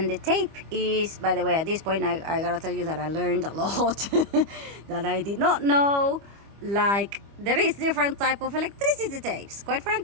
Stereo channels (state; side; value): late; left; 25 ms